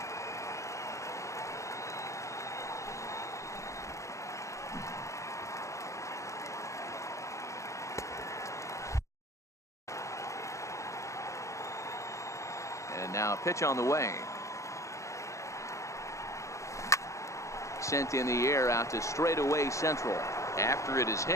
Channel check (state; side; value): late; right; 0.15 ms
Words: And now a pitch on the way. Sent in the air out to straightaway central. After it is